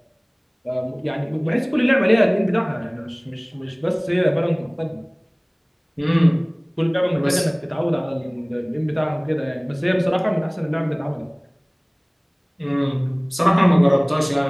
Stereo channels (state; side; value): identical; both; correlation 1.00